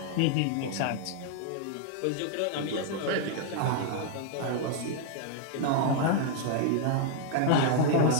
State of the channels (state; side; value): different; both; correlation 0.00